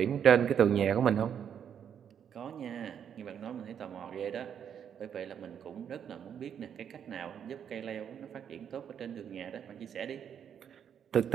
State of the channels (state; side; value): quieter; left; 8.4 dB